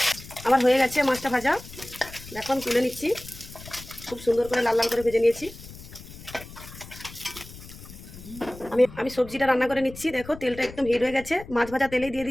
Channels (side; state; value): left; noise; rumble, 16 dB below the sound